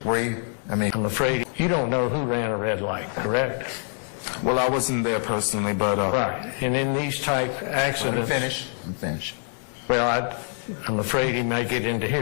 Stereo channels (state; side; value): silent; right; 56 dB below the other